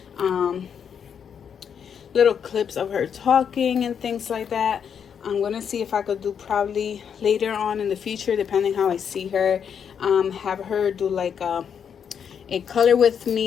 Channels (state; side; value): quieter; right; 7.6 dB